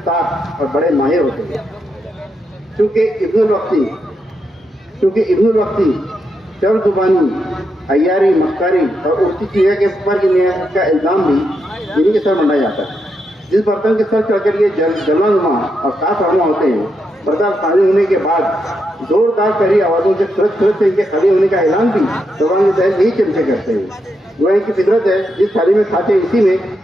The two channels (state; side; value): normal; both; correlation 0.83